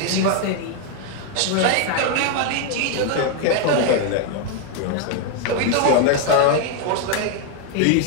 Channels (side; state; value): both; different; correlation 0.01